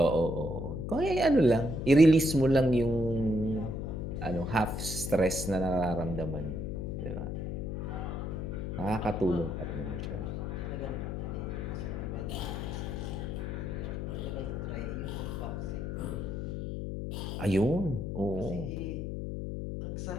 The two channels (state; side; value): noise; left; hum, 4 dB below the sound